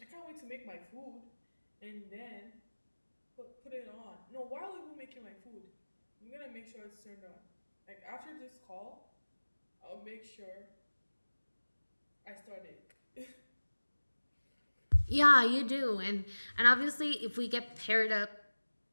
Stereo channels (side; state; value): both; inverted; correlation -1.00